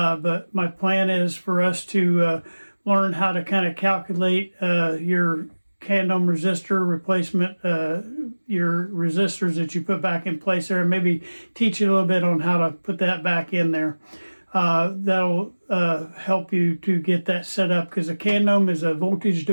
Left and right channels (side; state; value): both; inverted; correlation -1.00